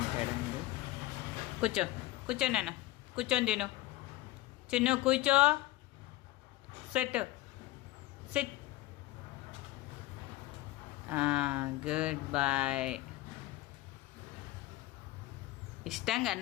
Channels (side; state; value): right; quieter; 17.1 dB